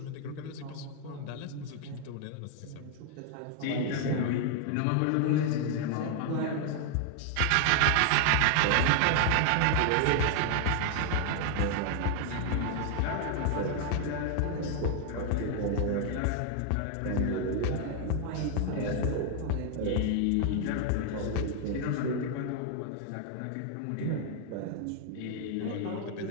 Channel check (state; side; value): different; both; correlation 0.00